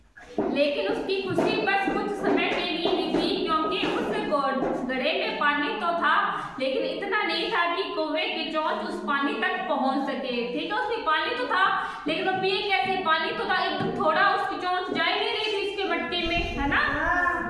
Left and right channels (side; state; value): both; identical; correlation 1.00